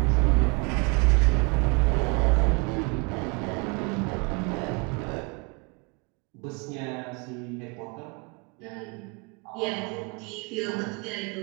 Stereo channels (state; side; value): quieter; left; 30.0 dB